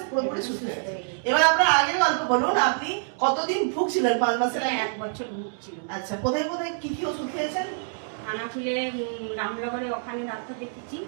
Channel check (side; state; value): left; silent; digital silence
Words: পুরোপুরি সুস্থ হয়ে গেছে। এবার আপনার আগের গল্প বলুন, আপনি কতদিন ভুগছিলেন 5 মাসের আগে? 1 বছর ভুগছিল। আচ্ছা, কোথায় কোথায় কি কি ওষুধ খেয়েছেন? খানাকুলে রামনগরে ওখানে ডাক্তার দেখেছি,